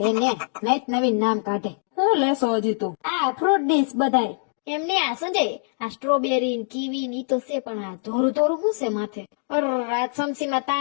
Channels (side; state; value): right; silent; 63 dB below the other